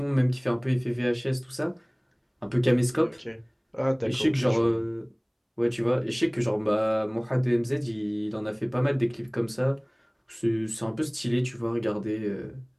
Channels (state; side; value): identical; both; correlation 1.00